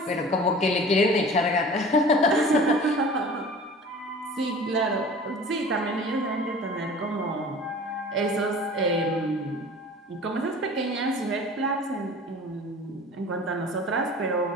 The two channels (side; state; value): both; normal; correlation 0.42